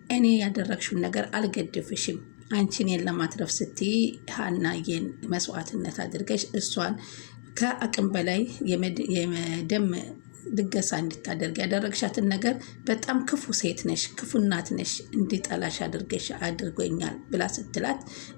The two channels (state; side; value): silent; right; digital silence